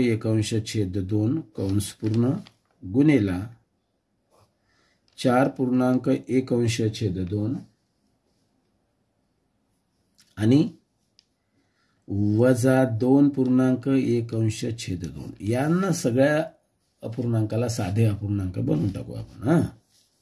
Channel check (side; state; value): both; identical; correlation 1.00